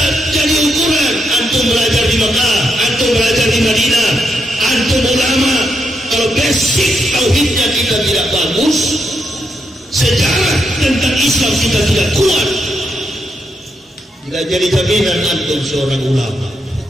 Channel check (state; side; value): normal; both; correlation 0.81